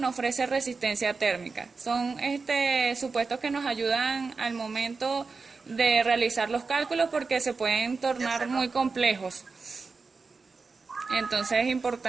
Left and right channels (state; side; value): quieter; left; 4.4 dB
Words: ofrece resistencia térmica. Son supuestos que nos ayudan al momento de realizar los cálculos porque se pueden tornar muy complejos. Entonces es